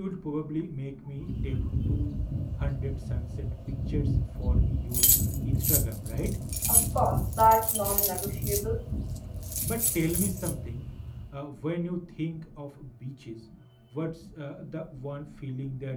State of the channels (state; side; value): identical; both; correlation 1.00